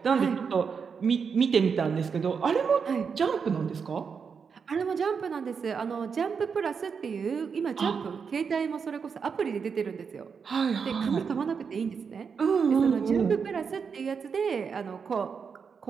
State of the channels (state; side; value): quieter; left; 6.0 dB